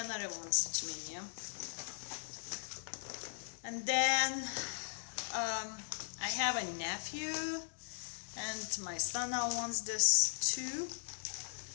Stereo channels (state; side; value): silent; right; digital silence